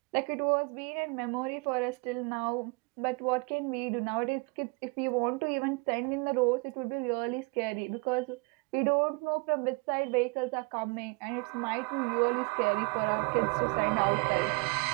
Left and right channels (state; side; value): quieter; left; 29.1 dB